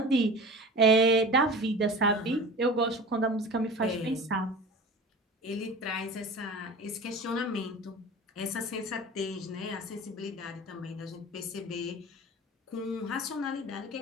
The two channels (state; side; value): normal; both; correlation 0.36